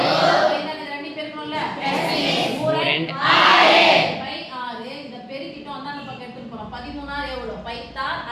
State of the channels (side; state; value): both; identical; correlation 1.00